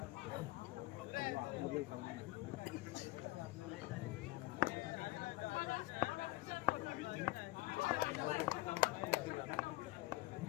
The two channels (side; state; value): right; quieter; 19.6 dB